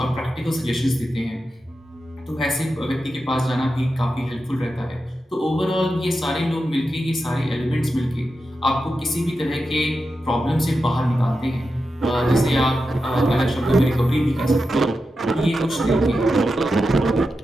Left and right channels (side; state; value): both; normal; correlation 0.90